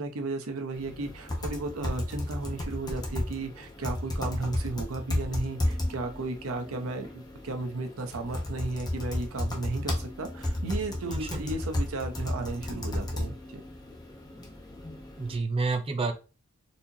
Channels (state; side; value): normal; both; correlation 0.72